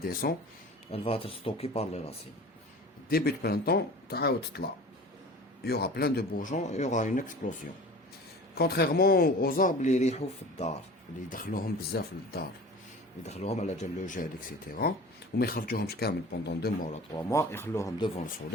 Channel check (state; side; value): normal; both; correlation 0.39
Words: descend, elle va être stockée par les racines. Début de printemps, il y aura plein de bourgeons, il y aura une explosion. Contrairement aux arbres اللي يريحوا في الدار، اللي يدخلوهم بزاف للدار، يدخلوهم على جال لو جيل اكسيتيرا، وما يخرجوهمش كامل بوندون 2 mois ولا 3 mois، يخلوهم devant le